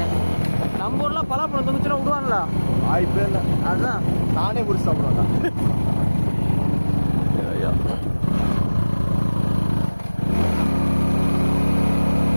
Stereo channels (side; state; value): both; inverted; correlation -1.00